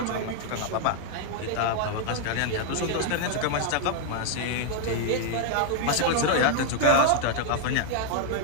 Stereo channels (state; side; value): different; both; correlation 0.00